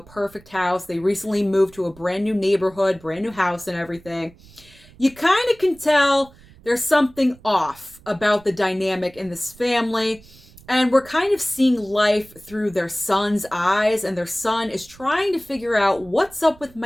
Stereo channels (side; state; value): right; noise; rumble, 24 dB below the sound